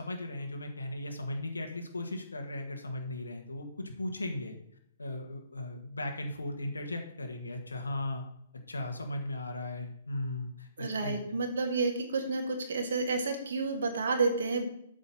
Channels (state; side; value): inverted; both; correlation -0.71